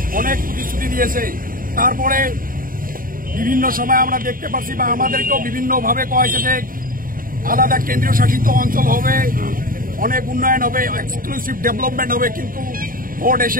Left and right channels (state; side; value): late; left; 0.41 ms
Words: অনেক প্রতিশ্রুতি দিয়েছে। তারপরে বিভিন্ন সময় আমরা দেখতে পাচ্ছি বা আমাদেরকেও বিভিন্নভাবে কয়েছে যে আলাদা কেন্দ্রীয় শাসিত অঞ্চল হবে, অনেক উন্নয়ন হবে, এক্সক্লুসিভ ডেভেলপমেন্ট হবে, কিন্তু ভোট